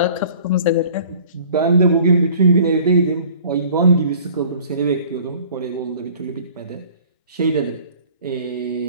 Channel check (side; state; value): both; inverted; correlation -0.49